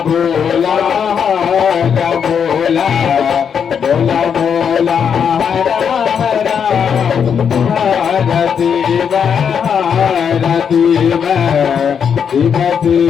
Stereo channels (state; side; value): quieter; right; 7.3 dB